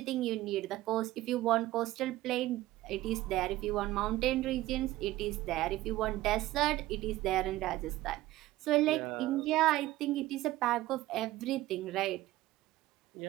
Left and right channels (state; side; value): quieter; left; 16.5 dB